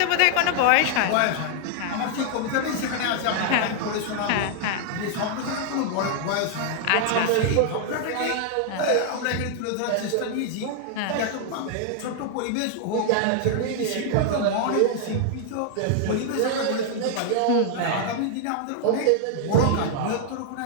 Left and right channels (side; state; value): both; different; correlation 0.00